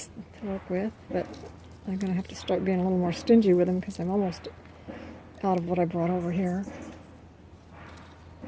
to work with, but I'm gonna have to start being a little more stingy with them because I'm almost out of what I brought over here.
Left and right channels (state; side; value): identical; both; correlation 1.00